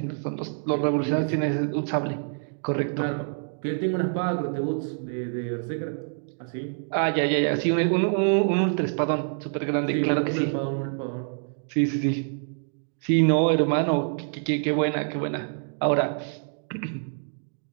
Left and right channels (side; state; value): left; silent; 61 dB below the other